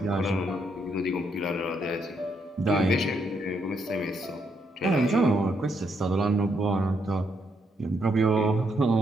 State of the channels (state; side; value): normal; both; correlation 0.76